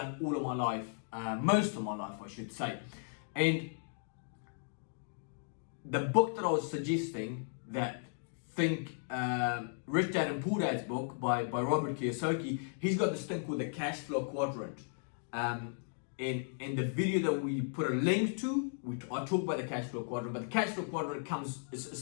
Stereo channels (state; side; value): silent; right; digital silence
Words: all of my life, most of my life, I should say. And the book that I was suggesting, that Think Rich Dad and Poor Dad's book by Robert Kiyosaki, he's got this thing called the cash flow quadrant. In the video that we put a link to, I talk about the cash flow quadrant, but the cash flow quadrant